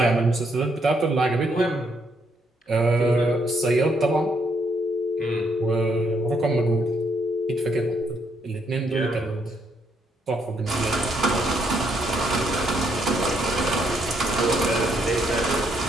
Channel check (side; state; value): both; normal; correlation 0.73